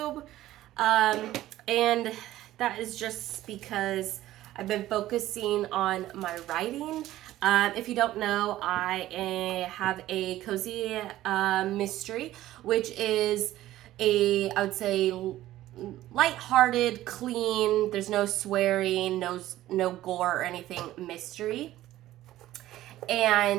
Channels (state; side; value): quieter; left; 14.7 dB